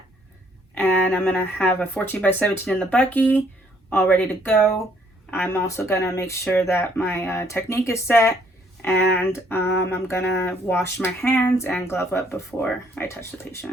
and I'm gonna have a 14x17 in the bucky all ready to go. I'm also gonna make sure that my technique is set, and I'm gonna wash my hands and glove up before I touch the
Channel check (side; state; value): both; normal; correlation 0.65